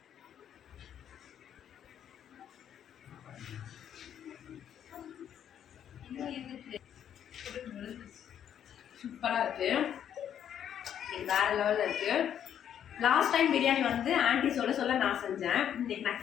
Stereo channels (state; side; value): quieter; right; 9.5 dB